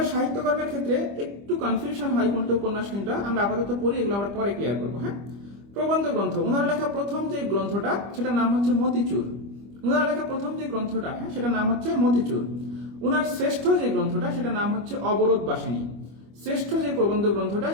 সাহিত্যকর্মের ক্ষেত্রে একটু কনফিউশন হয় কোনটা উপন্যাস কোনটা, আমরা আপাতত পড়ি, এগুলো আমরা পরে ক্লিয়ার করবো। হ্যাঁ, প্রবন্ধ গ্রন্থ, ওনার লেখা প্রথম যে গ্রন্থটা সেটার নাম হচ্ছে মতিচুর। ওনার লেখা প্রথম যে গ্রন্থটা, হ্যাঁ সেটার নাম হচ্ছে মতিচুর। ওনার শ্রেষ্ঠ যে গ্রন্থটা সেটার নাম হচ্ছে অবরোধ বাসিনী। শ্রেষ্ঠ যে প্রবন্ধ গ্রন্থটা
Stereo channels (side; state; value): left; late; 25 ms